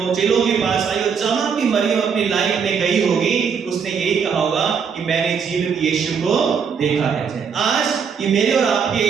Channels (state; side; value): quieter; left; 6.5 dB